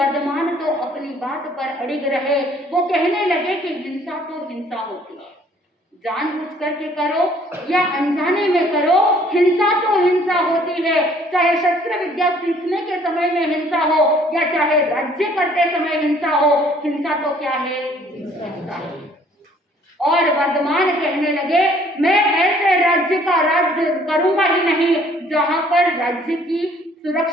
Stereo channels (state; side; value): normal; both; correlation 0.59